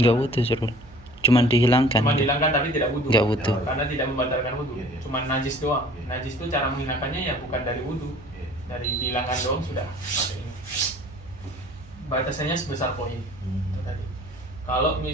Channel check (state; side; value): noise; right; hum, 23 dB below the sound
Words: Nggak wudhu Surul, cuman dihilangkan. Cuma dihilangkan tapi tidak wudhu. Nggak wudhu. Karena tidak membatalkan wudhu. Iya. Cuma najis doang. Iya. Najis itu cara menghilangkannya ya bukan dari wudhu, Iya. dari dihilangkan doang sudah. Pakai ini. Batasannya sebesar koin. Itu tadi. Kalau